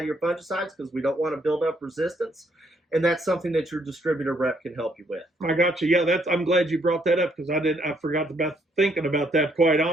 fungicides, because we don't want to build up resistance. And that's something that your distributor rep can help you with. I got you. Yeah, I'm glad you brought that up, because I forgot about thinking about that, quite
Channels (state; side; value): normal; both; correlation 0.70